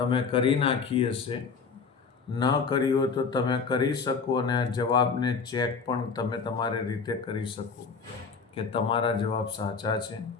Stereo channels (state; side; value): quieter; right; 5.3 dB